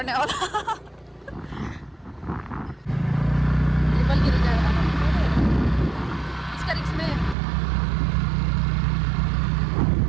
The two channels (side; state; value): left; drops out; at 7.4 s